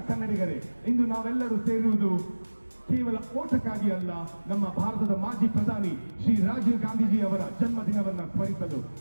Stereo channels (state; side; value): inverted; both; correlation -1.00